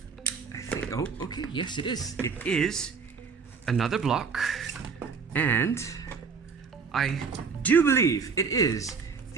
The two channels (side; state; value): left; quieter; 5.6 dB